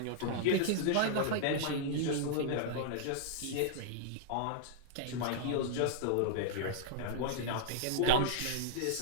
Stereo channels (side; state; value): both; different; correlation -0.01